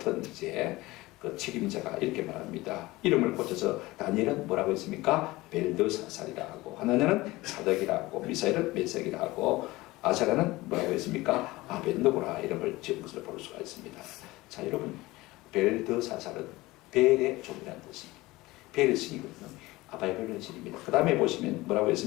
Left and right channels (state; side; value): quieter; right; 19.8 dB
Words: 이제 그 책임자가 이렇게 말합니다. 이름을 고쳐서 다니엘은 뭐라고 했습니까? 벨드사살이라 하고, 하나냐는 사덕이라 하고, 미사엘은 메색이라 하고, 아사랴는 뭐라고 했습니까? 아벤노고라 이름을 지은 것을 볼 수가 있습니다. 자, 여러분, 벨드사살은 벨의 종이라는 뜻입니다. 벨의 신이거든요. 아바이벨의 신입니다. 그 다음에 보시면 뭐라고